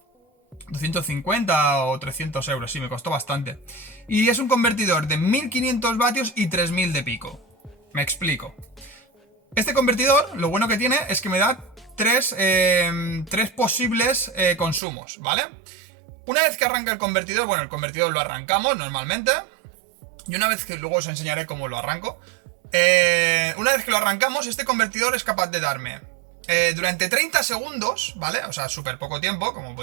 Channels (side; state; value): left; drops out; at 14.8 s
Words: 250 o 300 euros, sí, me costó bastante. Y es un convertidor de 1500 vatios y 3000 de pico. Me explico. Este convertidor, lo bueno que tiene es que me da tres posibles consumos, ¿vale? Una vez que arranca el convertidor, bueno, el convertidor lo arrancamos normalmente. Y una vez que luego os enseñaré cómo lo arranco. Una vez que lo arrancamos, este convertidor es capaz de darme durante 30 segundos, ¿vale? O sea, súper poco tiempo, como